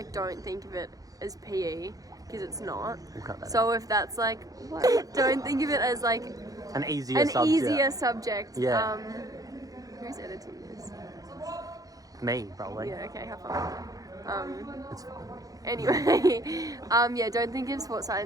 don't think of it as PE because it's not. We'll cut that So if that's like, what? Don't think of it as like An easier an subject. easier subject. Yeah. Who's editing this? Me, probably. Yeah. Okay. Have fun. It's fine. Anyway, yeah. Don't think of sports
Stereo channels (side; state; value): left; late; 0.17 ms